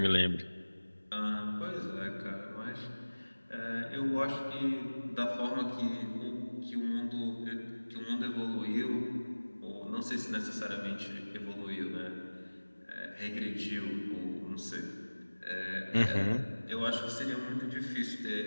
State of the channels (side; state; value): both; inverted; correlation -1.00